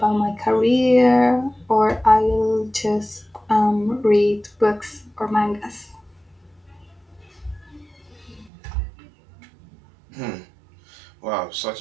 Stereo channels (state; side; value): drops out; left; at 8.5 s